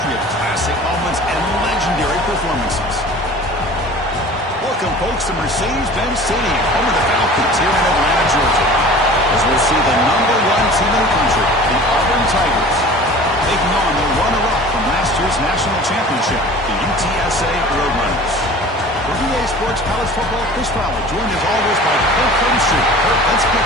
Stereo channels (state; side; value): normal; both; correlation 0.42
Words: of classic moments and legendary performances. Welcome, folks, to Mercedes-Benz Stadium, home of the Falcons here in Atlanta, Georgia, as we'll see the #1 team in the country, the Auburn Tigers, taking on the runner-up from last year's national championship, the UTSA Roadrunners. For EA Sports College Football, Chris Fowler, joined as always by Kurt Clemson. Kurt, let's get